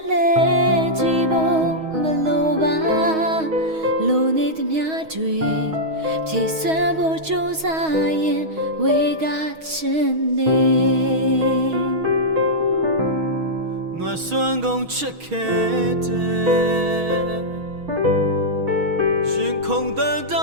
လဲကြည့်ဖို့မလိုပါလိုနေသမျှတွေဖြည့်စွမ်းဖို့ကြိုးစားရင်ဝေကချင်နေငါစွမ်းကုန်ချစ်ခဲ့တယ်ရှင်ခုန်တဲ့တိ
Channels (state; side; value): late; left; 6.3 ms